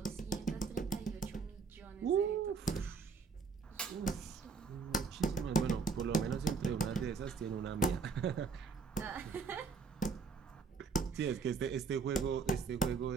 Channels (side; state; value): left; quieter; 5.2 dB